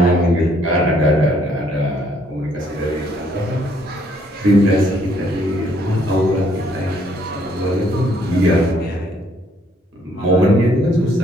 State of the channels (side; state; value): both; normal; correlation 0.66